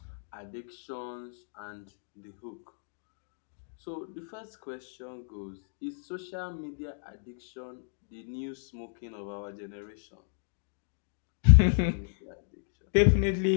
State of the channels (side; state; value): right; silent; digital silence